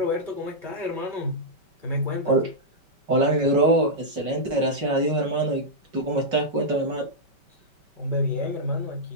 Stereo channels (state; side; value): late; left; 5.2 ms